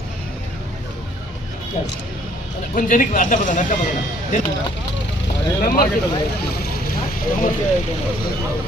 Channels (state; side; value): normal; both; correlation 0.62